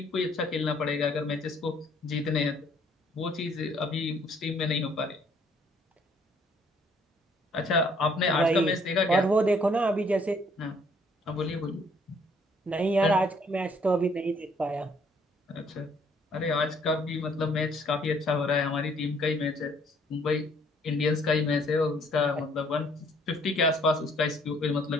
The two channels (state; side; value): normal; both; correlation 0.63